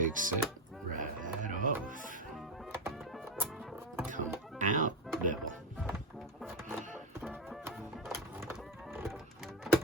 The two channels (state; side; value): normal; both; correlation 0.13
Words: it right off. Come out, devil.